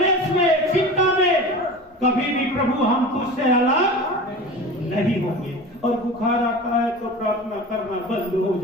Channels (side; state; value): both; normal; correlation 0.34